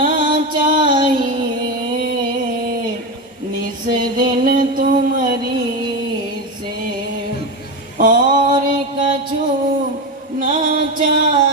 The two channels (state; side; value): normal; both; correlation 0.17